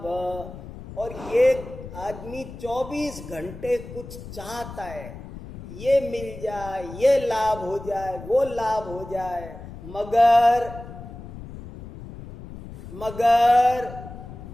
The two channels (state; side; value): noise; left; rumble, 13 dB below the sound